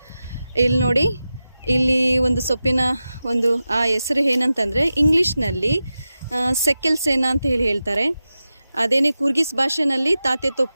ಇಲ್ಲಿ ನೋಡಿ, ಇಲ್ಲಿ ಒಂದು ಸೊಪ್ಪಿನ ಒಂದು ಆ ಹೆಸರು ಏನಂತಂದರೆ ಇಂಗ್ಲೀಷ್ನಲ್ಲಿ ಸೆಕೆಲ್ ಸೇನಾ ಅಂತ ಹೇಳ್ತಾರೆ. ಅದೇನೇ ಕೂರ್ಗಿಸ್ ಭಾಷೆನಲ್ಲಿ ತಾತೆ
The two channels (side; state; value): both; inverted; correlation -0.93